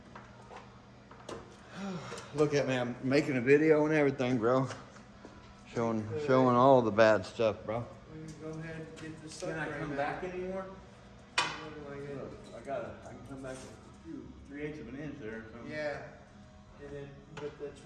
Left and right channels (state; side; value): identical; both; correlation 1.00